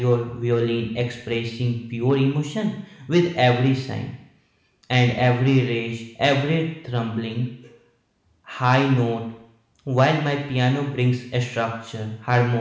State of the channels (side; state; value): both; identical; correlation 1.00